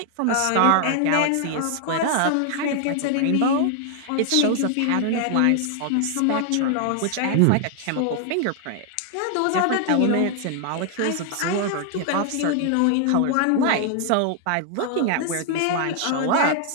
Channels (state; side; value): different; both; correlation 0.00